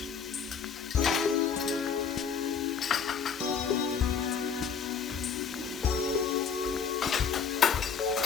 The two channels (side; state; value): right; quieter; 6.6 dB